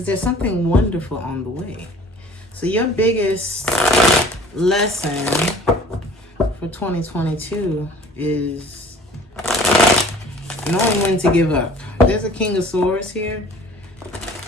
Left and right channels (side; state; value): both; normal; correlation 0.49